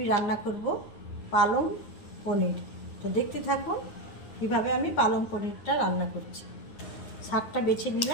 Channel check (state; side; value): late; right; 9.5 ms